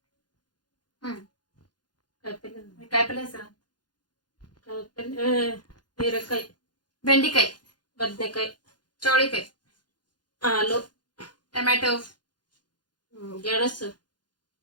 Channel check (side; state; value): right; late; 0.70 ms